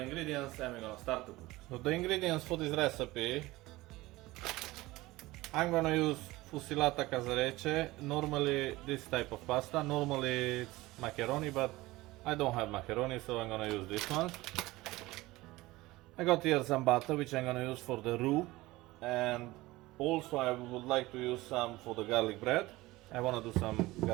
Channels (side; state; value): left; quieter; 19.3 dB